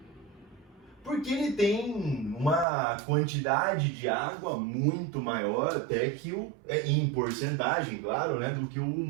porque ele tem uma quantidade de água muito maior até que em porcentagem, claro, né, do que o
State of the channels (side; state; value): left; drops out; at 2.7 s